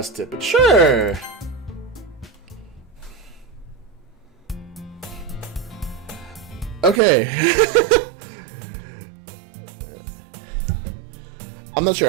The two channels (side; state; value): left; drops out; at 7.0 s